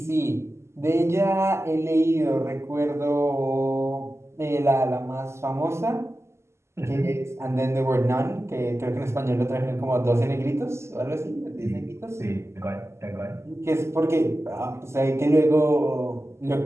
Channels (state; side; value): late; left; 0.13 ms